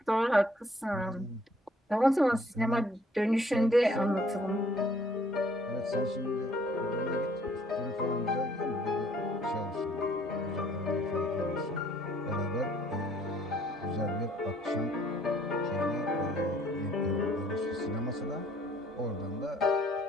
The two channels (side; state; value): both; normal; correlation 0.61